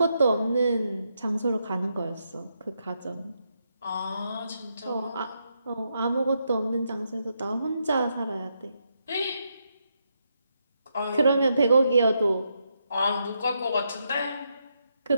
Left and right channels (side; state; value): both; inverted; correlation -0.81